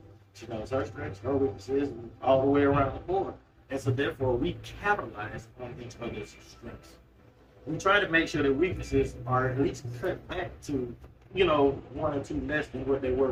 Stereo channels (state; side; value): identical; both; correlation 1.00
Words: She knows her strengths, her weaknesses, and all the way around the board. And so therefore, we capitalize on each other's strengths. We try to make sure that weaknesses are at least cut back to, 1 or 2 less than what they